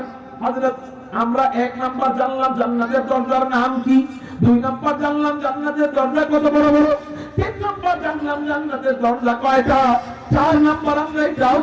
হযরত আমরা 1 নাম্বার জানলাম জান্নাতের দরজার নাম কি, 2 নাম্বার জানলাম জান্নাতের দরজা কত বড় বড়, 3 নাম্বার জানলাম জান্নাতের দরজা কয়টা, 4 নাম্বার আমরা এটাও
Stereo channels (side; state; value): both; identical; correlation 1.00